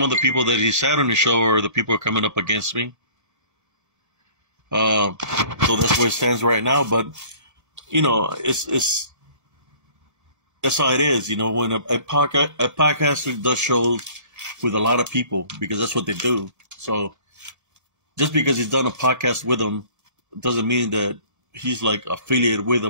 of the people that he sat on the show are the people who are coming up against me. So that's where it stands right now. But it's that's how it is. When a podcaster does shows with a lot of people, because that's what they do. So just because he's done a podcast with them doesn't mean that he's like affiliated with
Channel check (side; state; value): left; late; 1.8 ms